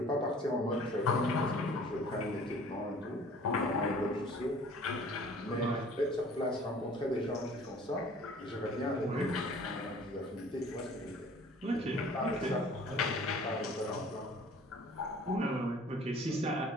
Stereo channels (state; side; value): normal; both; correlation 0.50